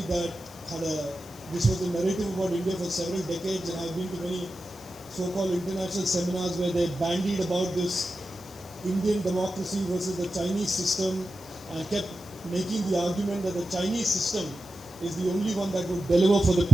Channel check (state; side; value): noise; left; hiss, 21 dB below the sound